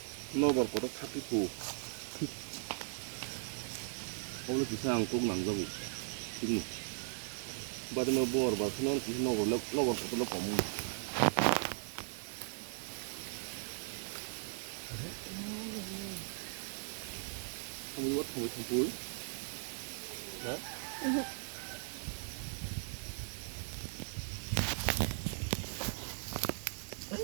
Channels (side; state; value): left; silent; digital silence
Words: nobar kotak tapiku 오늘 기상 꼭 남자고 지금 바디마 부바 bar 그는 기상 노bar kotak 거무 không có thổi thằng cuối đó